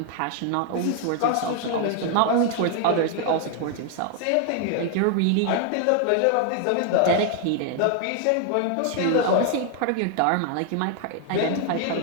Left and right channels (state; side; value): different; both; correlation 0.00